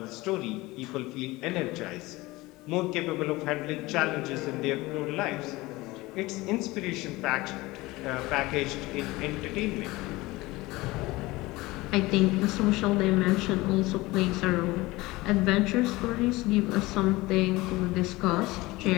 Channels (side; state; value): right; quieter; 20.6 dB